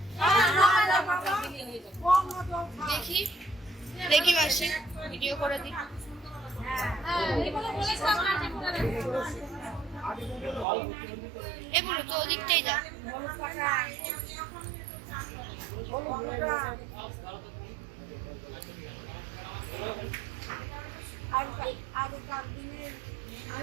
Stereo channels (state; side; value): drops out; left; at 10.7 s